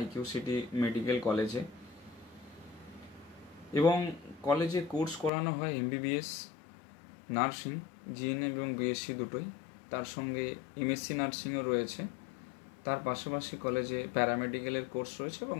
সিটি মেডিকেল কলেজে। এবং কলেজে কোর্স করানো হয় এমবিবিএস, নার্সিং, জিএনএম এবং বিএসসি দুটোই। তার সঙ্গে এমএসসি নার্সিংও রয়েছে। তার পাশাপাশি কলেজে প্যারামেডিক্যালের কোর্স রয়েছে এবং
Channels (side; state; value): right; drops out; at 5.3 s